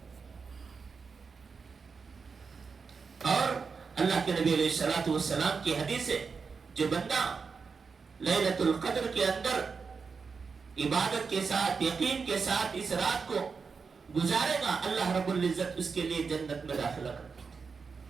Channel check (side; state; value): left; quieter; 5.2 dB